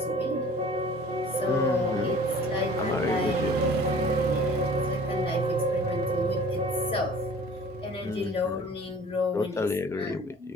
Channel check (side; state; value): both; normal; correlation 0.46